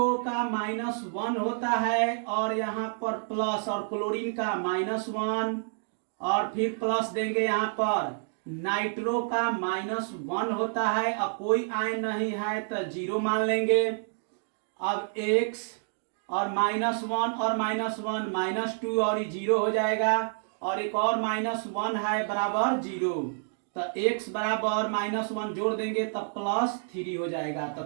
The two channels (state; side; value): silent; left; digital silence